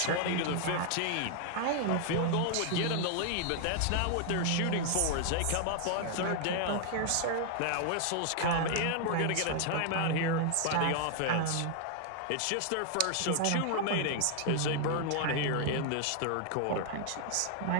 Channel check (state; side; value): different; both; correlation 0.00